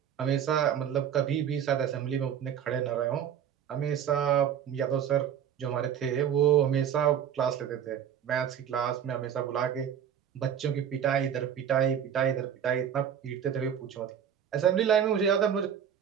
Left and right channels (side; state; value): left; quieter; 9.0 dB